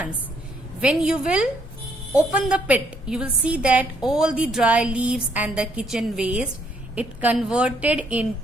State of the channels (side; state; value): left; noise; hum, 22 dB below the sound